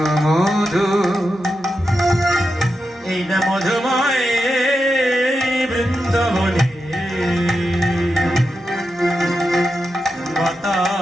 মধু, এই না মধুময় বৃন্দাবনে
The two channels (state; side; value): normal; both; correlation 0.88